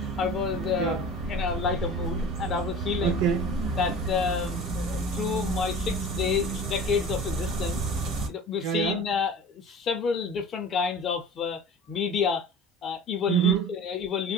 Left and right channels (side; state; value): both; normal; correlation 0.38